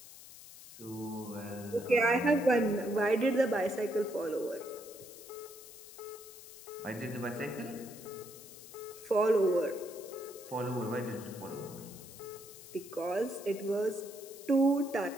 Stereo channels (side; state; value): left; noise; hiss, 16 dB below the sound